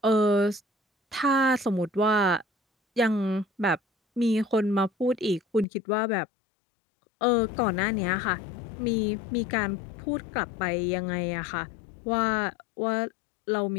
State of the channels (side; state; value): right; drops out; at 5.7 s